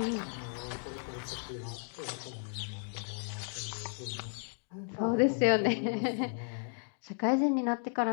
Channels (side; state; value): right; silent; 55 dB below the other